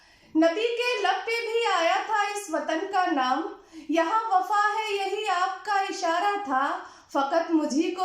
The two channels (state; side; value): identical; both; correlation 1.00